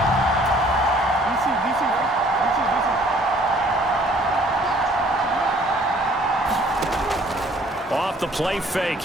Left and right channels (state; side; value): normal; both; correlation 0.58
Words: Off the play fake.